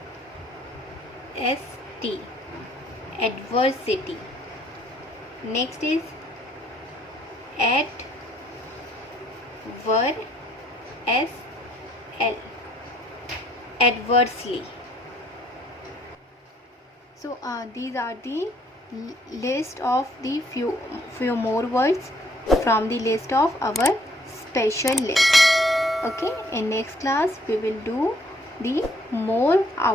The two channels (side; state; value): both; normal; correlation 0.64